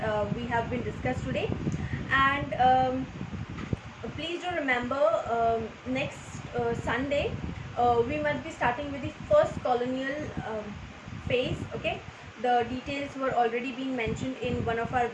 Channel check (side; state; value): both; identical; correlation 1.00